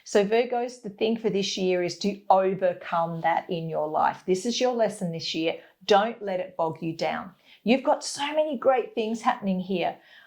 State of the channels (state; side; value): identical; both; correlation 1.00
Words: So Virgos, the thing for this year is to overcome that in your life. This is your lesson this year. Don't let it bog you down. You've got so many great things happening here.